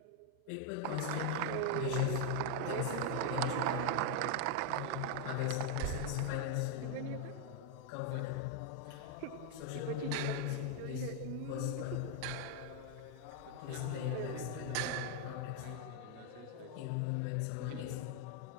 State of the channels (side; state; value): both; different; correlation 0.00